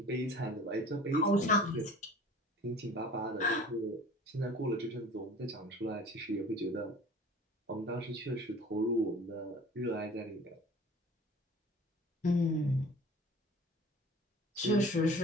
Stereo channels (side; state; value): both; normal; correlation 0.45